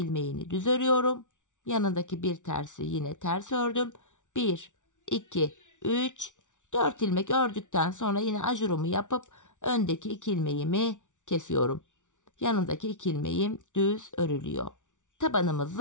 düz örüyorum. Yanındaki bir tersi yine ters ördüm. 1, 2, 3, 4 ilmek ördükten sonra yine ajurumu yapıp öndeki 2 ilmeğimi kesiyorum. Yanındaki 2 ilmeğim düz örülüyor.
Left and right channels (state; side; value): late; right; 0.86 ms